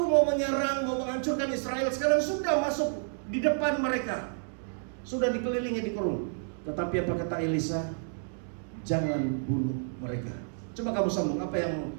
mau menyerang, mau menghancurkan Israel, sekarang sudah masuk di depan mereka, sudah dikelilingi, dikurung. Tetapi apa kata Elisa? Jangan bunuh mereka. Coba kamu sambung, apa yang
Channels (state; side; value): silent; left; digital silence